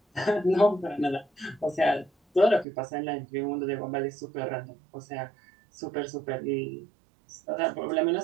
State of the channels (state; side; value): drops out; left; at 2.7 s